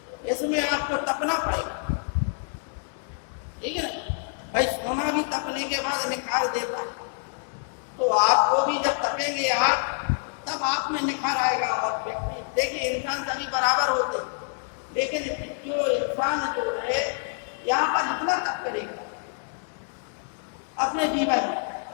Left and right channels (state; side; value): silent; right; digital silence